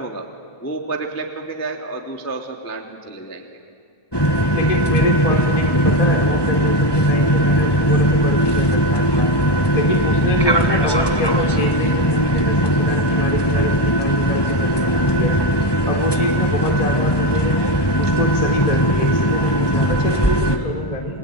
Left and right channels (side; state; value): right; late; 1.2 ms